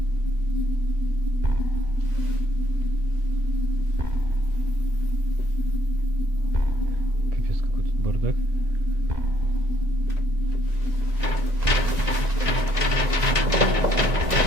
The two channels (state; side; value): late; left; 1.9 ms